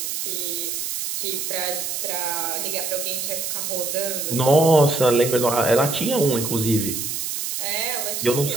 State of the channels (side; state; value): right; noise; hiss, 3 dB below the sound